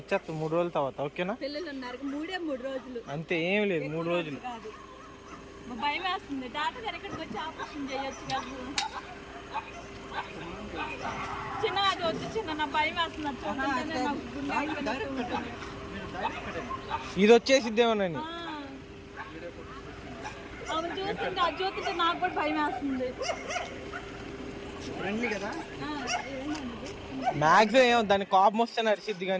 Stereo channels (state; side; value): identical; both; correlation 1.00